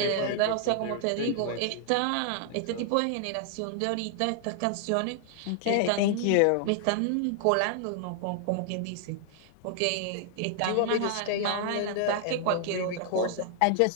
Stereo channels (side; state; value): both; different; correlation 0.00